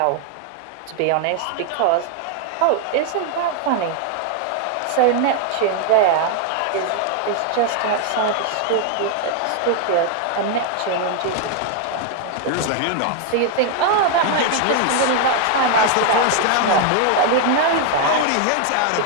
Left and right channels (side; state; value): both; different; correlation 0.00